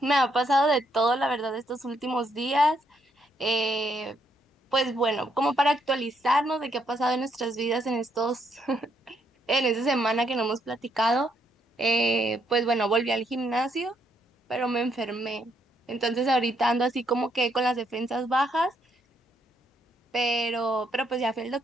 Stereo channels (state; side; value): normal; both; correlation 0.74